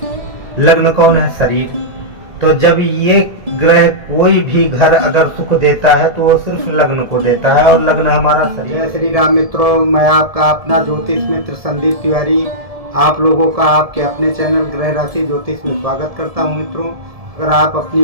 लग्न कौन है? शरीर। तो जब ये ग्रह कोई भी घर अगर सुख देता है तो वो सिर्फ लग्न को देता है, और लग्न हमारा शरीर। जय श्री राम मित्रों, मैं आपका अपना ज्योतिष मित्र संदीप तिवारी आप लोगों का आपके अपने चैनल ग्रह राशि ज्योतिष में स्वागत करता हूं। मित्रों, अगर आप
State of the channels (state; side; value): late; left; 1.7 ms